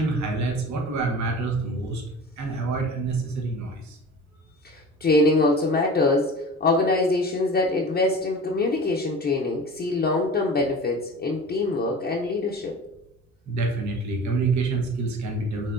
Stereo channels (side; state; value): both; normal; correlation 0.38